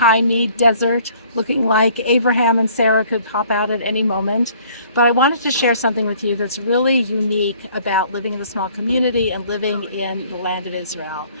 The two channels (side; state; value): both; inverted; correlation -0.57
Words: me, desert, looking like Abraham and Sarah could pop out at any moment. But I wanted to share something with you that's really unique about living in a small community and living in the land of Israel.